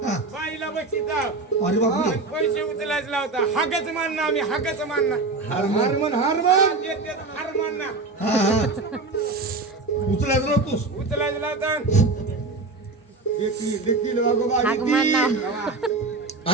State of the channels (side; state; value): left; quieter; 3.6 dB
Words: हा. बाईला बक्षिता अरे बापरे. पैसे उचलायचं लावता. हागच मानना आम्ही हागच मानना. हारमन हारमन हार मानना हा हा उचलायचं नव्हतोस. उचलायचं लावता. देतील वागोबा हाक मानना. देतील.